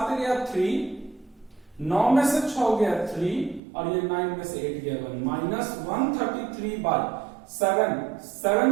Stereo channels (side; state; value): left; drops out; at 3.6 s